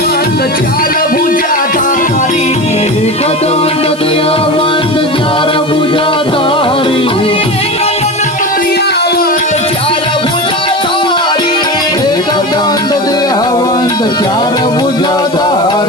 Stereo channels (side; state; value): left; noise; hiss, 21 dB below the sound